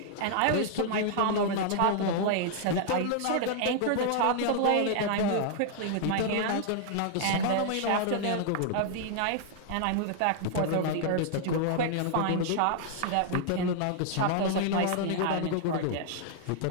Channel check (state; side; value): different; both; correlation -0.01